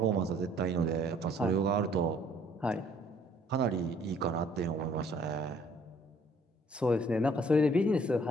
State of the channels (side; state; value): both; normal; correlation 0.60